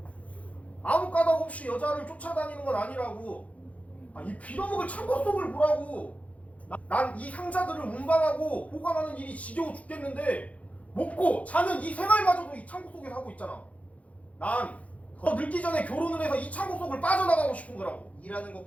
아무 까닭 없이 여자를 쫓아다니는 건 아니라고. 이 빌어먹을 창고 속을 보라고. 난 이 상자들을 운반하고 보관하는 일이 지겨워 죽겠는데 먹고 자는 이 생활마저도 이 창고 속에서 하고 있잖아. 난 더 늙기 전에 결혼을 해서 이 창고 속을 빠져나가고 싶은 거라고. 일하는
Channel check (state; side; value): late; right; 0.067 ms